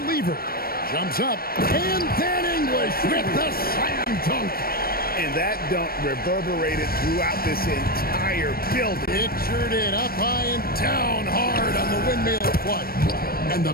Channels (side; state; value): right; late; 0.44 ms